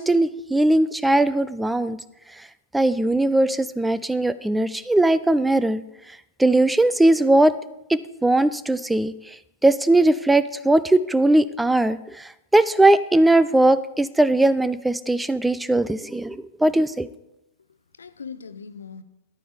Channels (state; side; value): normal; both; correlation 0.93